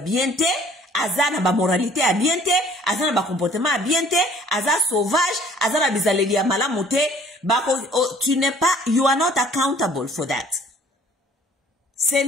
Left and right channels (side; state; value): both; normal; correlation 0.55